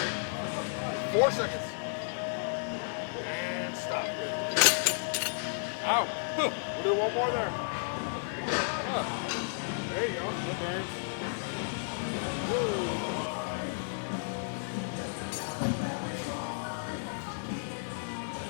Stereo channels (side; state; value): right; silent; digital silence